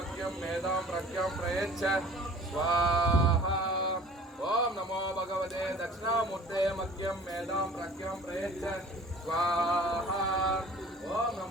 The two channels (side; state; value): both; normal; correlation 0.47